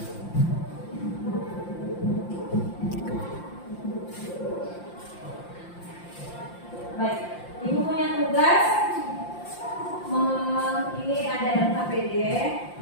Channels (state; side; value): late; right; 5.8 ms